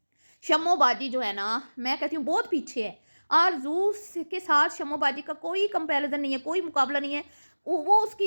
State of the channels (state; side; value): inverted; both; correlation -1.00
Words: शम्मो बाजी जो है ना, मैं कहती हूँ बहुत पीछे है। आरज़ू के साथ शम्मो बाजी का कोई कंपैरिजन नहीं है, कोई मुकाबला नहीं है। वो